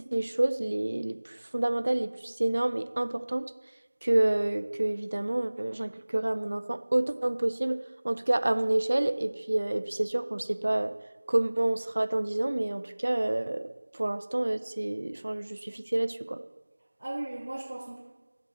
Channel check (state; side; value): inverted; both; correlation -1.00